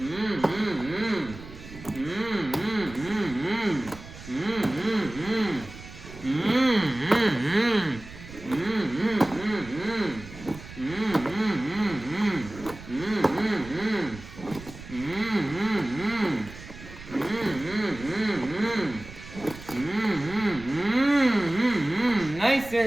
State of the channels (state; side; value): noise; right; rumble, 15 dB below the sound